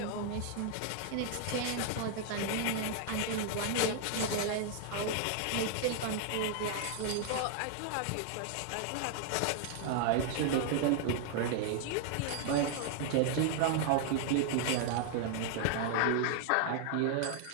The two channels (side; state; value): both; different; correlation 0.00